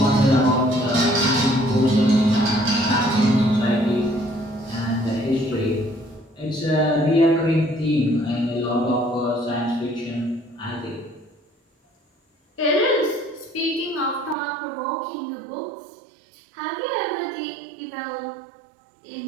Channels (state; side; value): drops out; left; at 14.4 s